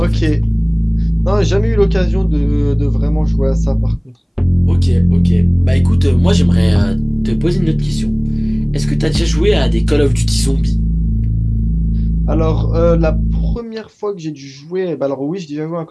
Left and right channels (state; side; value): identical; both; correlation 1.00